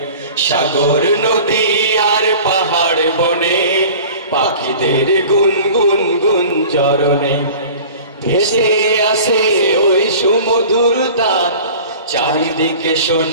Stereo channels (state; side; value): inverted; both; correlation -0.41